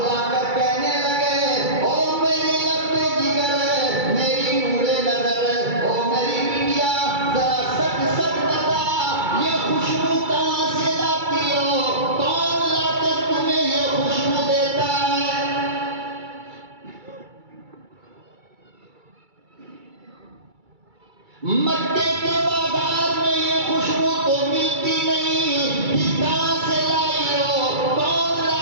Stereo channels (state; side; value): late; left; 2.3 ms